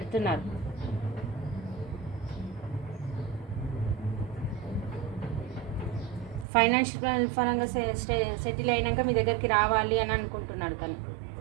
ఫైనాన్షియల్ పరంగా సెటిల్ అయినాక మీ దగ్గరికి రావాలి అని అనుకుంటున్నాడు తను.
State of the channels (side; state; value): left; drops out; at 6.5 s